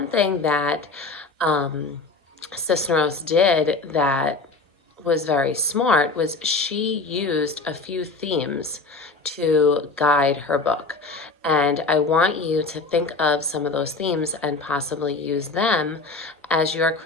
thing that Cisneros did that was very smart was she used a few themes to guide her book. And I want you to think of some of those themes and possibly use them as you're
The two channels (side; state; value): right; quieter; 3.7 dB